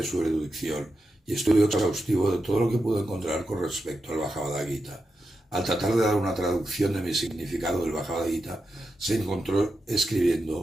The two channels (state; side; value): normal; both; correlation 0.88